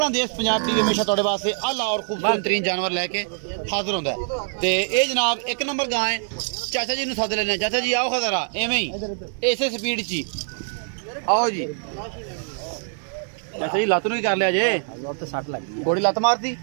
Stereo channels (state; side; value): silent; left; 63 dB below the other